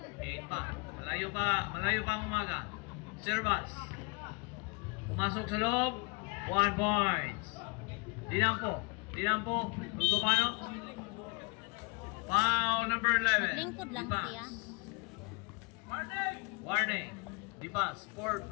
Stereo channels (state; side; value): quieter; right; 31.7 dB